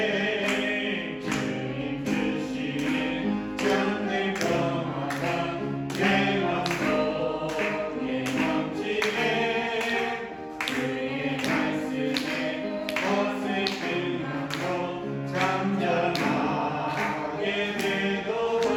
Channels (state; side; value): identical; both; correlation 1.00